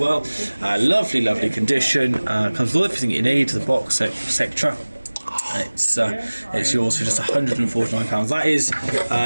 Lovely, lovely condition. Comes with everything you need, the box, etc. It's yours for just £149. That is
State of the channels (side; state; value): both; inverted; correlation -1.00